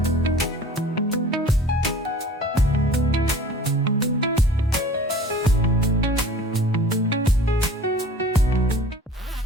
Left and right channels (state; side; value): normal; both; correlation 0.45